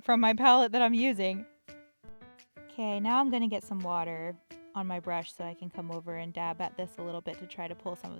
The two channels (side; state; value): both; inverted; correlation -1.00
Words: from my palette that I'm using. Okay, now I'm gonna get some water on my brush so I can come over and dab at this a little bit to try to pull some of